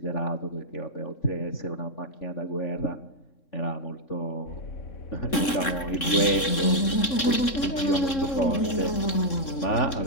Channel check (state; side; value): late; right; 3.6 ms